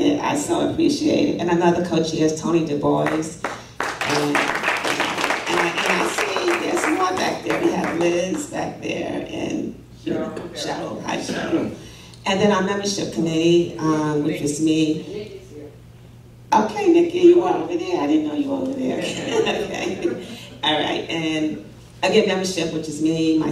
I so appreciate it. And another co-chair is Tony Du Bois. And I see there's more back there. We have Liz back there and Cheryl. Hi, Cheryl. And then our membership committee, which is me. Okay, Nikki, you were over there. I didn't know you were over there. Okay. All right. And again, membership, which is me,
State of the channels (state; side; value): identical; both; correlation 1.00